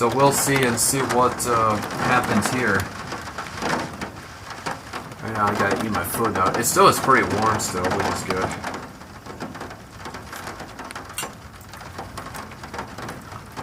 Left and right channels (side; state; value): both; identical; correlation 1.00